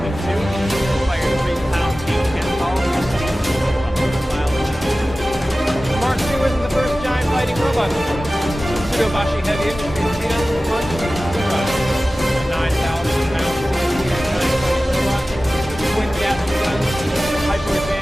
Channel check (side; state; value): both; normal; correlation 0.96